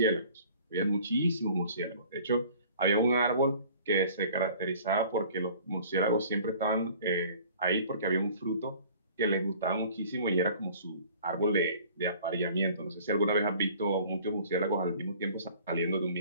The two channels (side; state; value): both; inverted; correlation -0.49